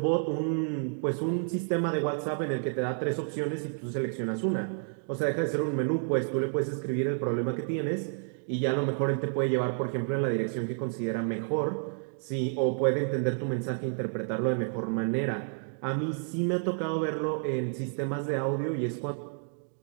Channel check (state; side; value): silent; left; digital silence